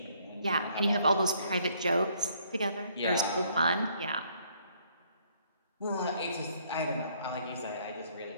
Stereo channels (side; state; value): both; inverted; correlation -0.65